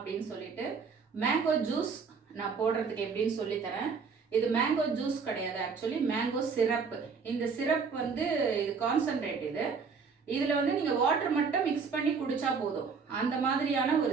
சொல்லிட்டு மேங்கோ ஜூஸ் நான் போடுறதுக்கு எப்படின்னு சொல்லித்தரேன். இது மேங்கோ ஜூஸ் கிடையாது, ஆக்சுவலி மேங்கோ சிரப். இந்த சிரப் வந்து இது கான்சன்ட்ரேட். இதில் வந்து நீங்கள் வாட்டர் மட்டும் மிக்ஸ் பண்ணி குடிச்சா போதும், அந்த மாதிரியான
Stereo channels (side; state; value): left; quieter; 5.4 dB